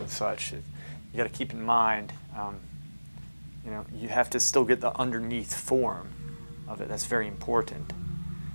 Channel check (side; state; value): both; inverted; correlation -1.00